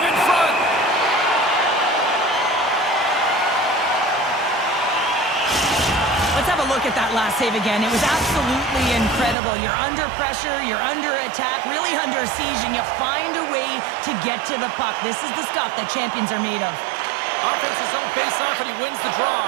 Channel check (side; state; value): left; drops out; at 9.3 s